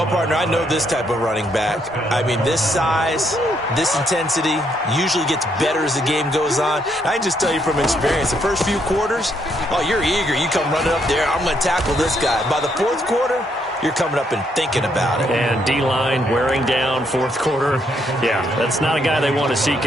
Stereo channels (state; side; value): normal; both; correlation 0.73